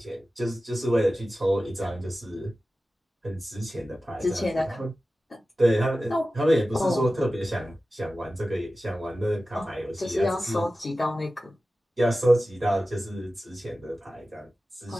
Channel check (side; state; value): both; normal; correlation 0.95